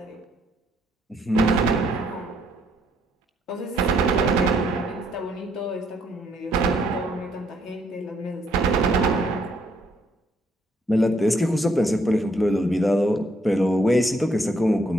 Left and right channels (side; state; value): both; normal; correlation 0.70